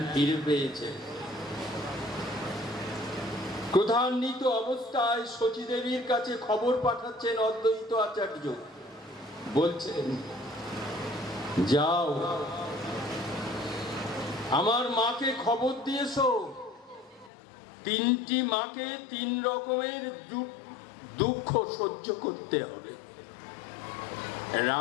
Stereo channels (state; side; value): drops out; right; at 17.3 s